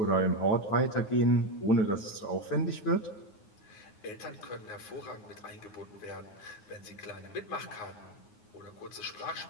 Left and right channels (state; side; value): late; right; 9.5 ms